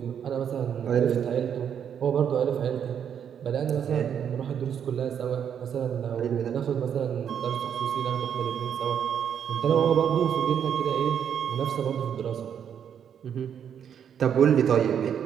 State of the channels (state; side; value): quieter; left; 8.4 dB